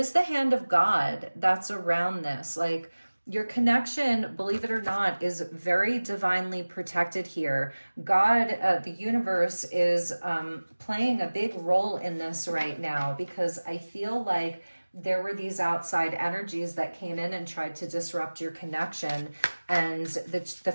the hand of God that's around this. Like, your connection, believe it or not, is very divinely protected here. God, the universe, is playing a big role in this right now, because I feel like there were these outside energies that came in and tried to disrupt your connection. And the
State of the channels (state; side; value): inverted; both; correlation -1.00